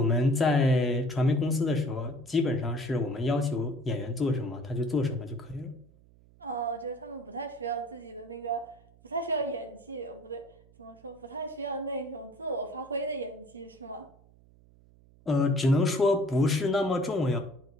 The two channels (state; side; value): noise; right; hum, 27 dB below the sound